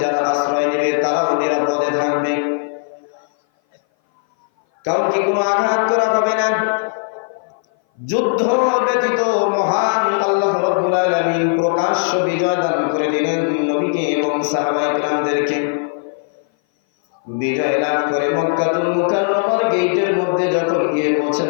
যারা আশ্রয় নেবে তারাও নিরাপদে থাকবে, কাউকে কোনো আঘাত করা হবে না। যুদ্ধ ব্যতীত মহান আল্লাহ রাব্বুল আলামিন প্রকাশ্য বিজয় দান করে দিলেন নবীকে এবং সাহাবায়ে কেরামদেরকে। বিজয় লাভ করে মক্কাতুল মুকাররমার গেটের মধ্যে যখন গিয়ে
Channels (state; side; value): silent; right; 58 dB below the other